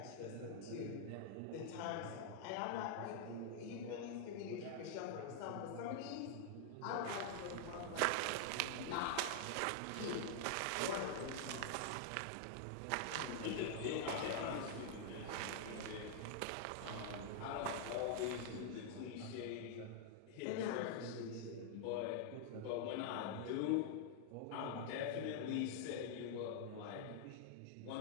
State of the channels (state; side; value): different; both; correlation 0.00